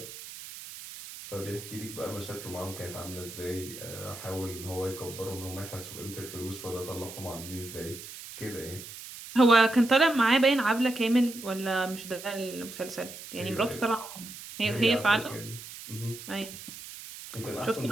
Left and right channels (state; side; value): noise; right; hiss, 13 dB below the sound